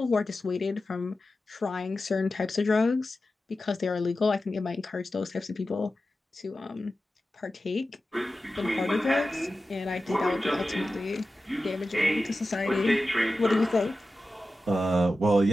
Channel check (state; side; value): normal; both; correlation 0.93